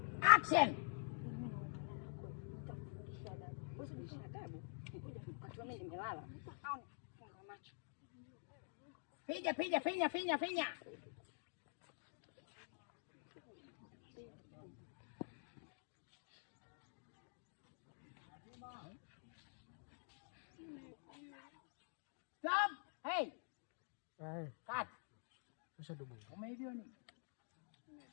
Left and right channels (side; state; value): right; silent; digital silence